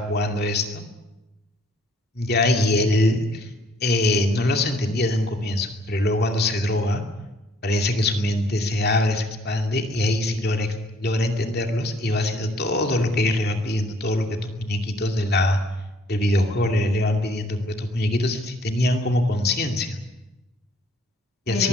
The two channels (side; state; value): both; normal; correlation 0.61